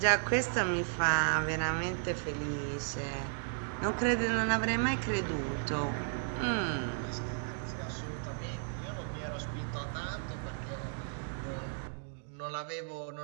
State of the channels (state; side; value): silent; left; 55 dB below the other